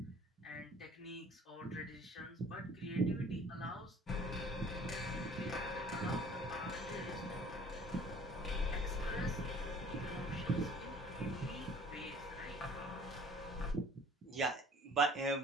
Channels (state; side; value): normal; both; correlation 0.52